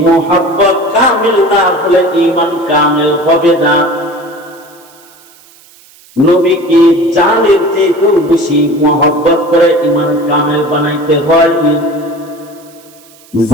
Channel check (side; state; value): right; noise; hiss, 26 dB below the sound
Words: মহব্বত কামিল না হলে ঈমান কামিল হবে না। নবীকে জানের চেয়ে বেশি মহব্বত করে ঈমান কামিল বানাইতে হয়।